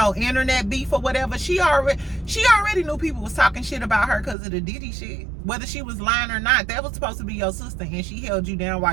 internet beef or whatever, she already knew people was talking shit about her because of the Diddy shit. Whether she was lying or not, that was supposed to be your sister, and she held you down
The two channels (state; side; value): drops out; left; at 4.4 s